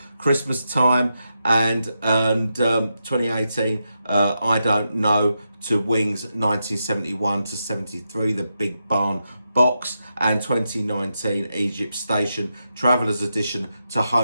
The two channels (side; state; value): both; inverted; correlation -0.86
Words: Christmas Time, and 2018, I Don't Know to Wings 1971 to 73, the Big Barn Box, and 2019, Egypt Station, Traveller's Edition to